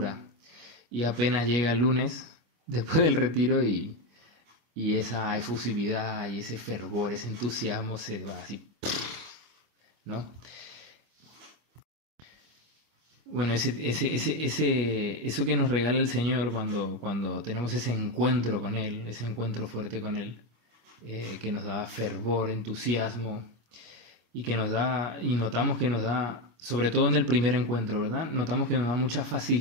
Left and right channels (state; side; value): late; left; 25 ms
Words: Y apenas llega el lunes, después del retiro, y esa efusividad y ese fervor, ese entusiasmo se va así, ¿no? Bueno, eso que nos regala el Señor cuando tenemos ese encuentro con Él, ese encuentro fuerte con Él, que nos da fervor, entusiasmo, y que nos da, y notamos que nos da, sobre todo en el primer encuentro, ¿verdad? Notamos que nos da mucha